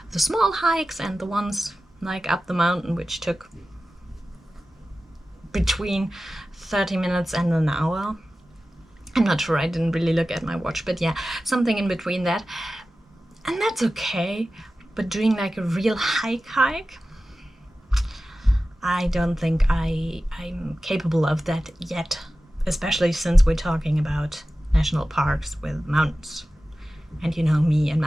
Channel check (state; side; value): normal; both; correlation 0.95